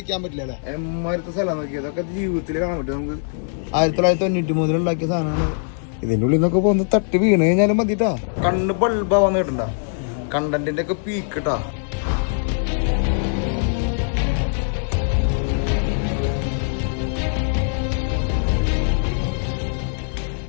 പറ്റില്ല അല്ലേ. എമ്മാരത്തെ സ്ഥലം നോക്കിയത് അതൊക്കെ ജീവിതത്തിൽ കാണാൻ പറ്റും നമുക്ക്. 1993 ഉണ്ടാക്കിയ സാധനമാണ്. ഇതിന്റെ ഉള്ളിൽ നിന്നൊക്കെ പോകുന്ന തട്ടി വീണ് കഴിഞ്ഞാലും മതിട്ടാ. കണ്ണ് ബൾബാ വന്ന് കിട്ടണ്ട. കണ്ടന്റിന്റെ ഒക്കെ പീക്കിട്ടാ.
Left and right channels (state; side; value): silent; right; digital silence